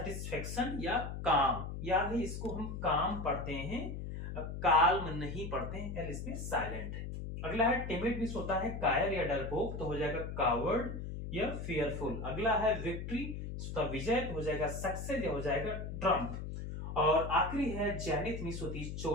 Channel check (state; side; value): noise; left; hum, 6 dB below the sound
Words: या काम। याद है इसको हम काम पढ़ते हैं, काल्म नहीं पढ़ते हैं, एल इसमें साइलेंट है। अगला है टिमिड, मिस होता है कायर या डरपोक, तो हो जाएगा कावर्ड या फियरफुल। अगला है विक्ट्री, विजय, तो हो जाएगा सक्सेस या हो जाएगा ट्रम्प। और आखिरी है जेनिथ, मिस होती है